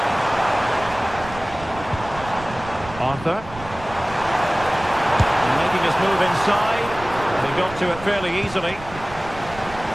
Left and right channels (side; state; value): right; noise; rumble, 15 dB below the sound